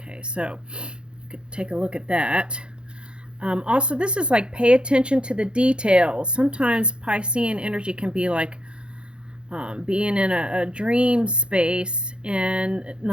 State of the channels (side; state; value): left; late; 0.054 ms